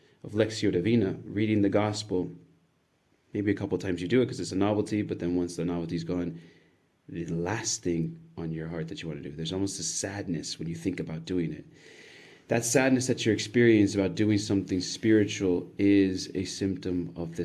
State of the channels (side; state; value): both; identical; correlation 1.00